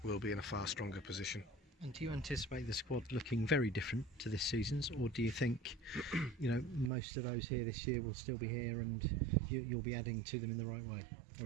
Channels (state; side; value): drops out; left; at 6.9 s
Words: we'll be in a far stronger position. And do you anticipate the squad looking very different to this season's, or do you think most of those here this year will still be here and you'll be adding to them in the right way?